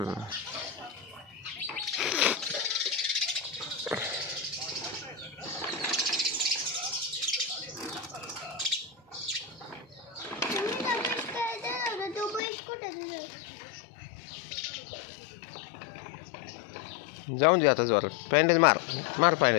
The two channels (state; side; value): drops out; right; at 12.4 s